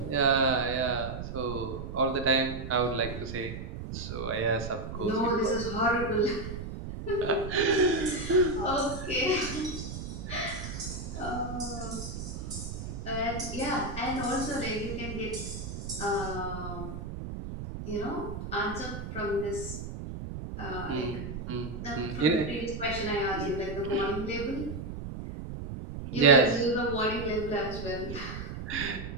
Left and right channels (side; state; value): right; noise; rumble, 7 dB below the sound